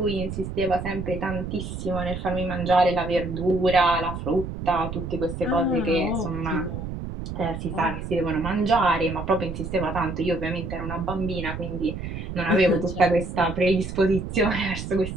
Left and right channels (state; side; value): noise; right; rumble, 7 dB below the sound